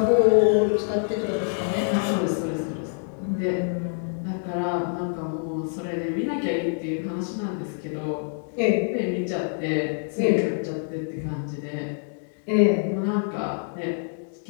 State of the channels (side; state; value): right; silent; 61 dB below the other